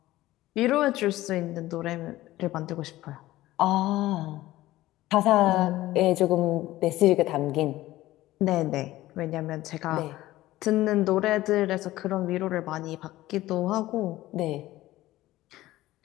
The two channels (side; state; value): right; quieter; 16.3 dB